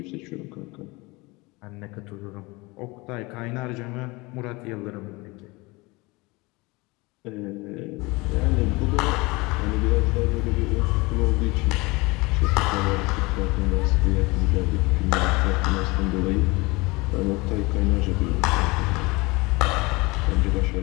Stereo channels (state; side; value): quieter; right; 24.2 dB